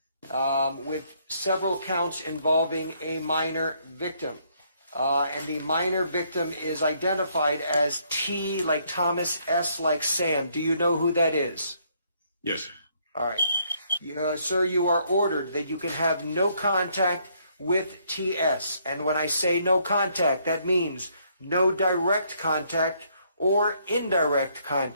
with several counts involving a minor victim. And the minor victim is identified as T like Thomas, S like Sam. Do you know who that is? Yes. All right. Sir, you are ordered that you can have no contact with TS. And when I say no contact, that means no direct contact or indirect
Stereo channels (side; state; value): both; inverted; correlation -0.69